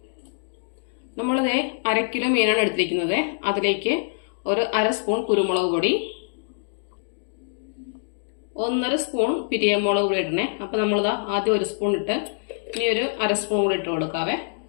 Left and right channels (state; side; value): silent; right; digital silence